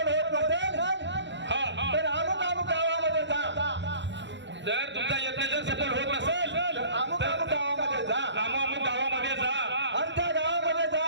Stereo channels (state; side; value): late; left; 0.52 ms